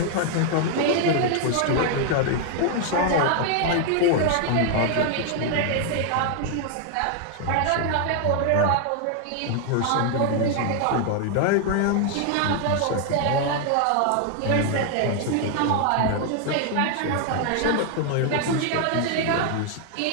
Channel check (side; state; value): both; different; correlation 0.00